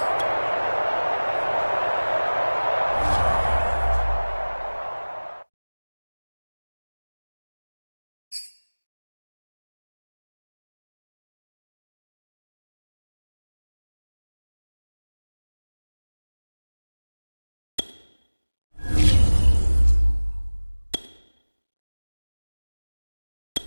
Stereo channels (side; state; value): both; inverted; correlation -1.00